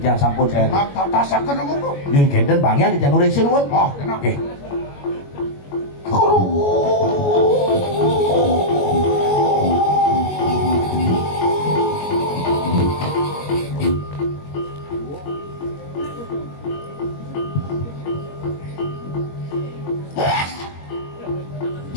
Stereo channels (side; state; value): right; late; 21 ms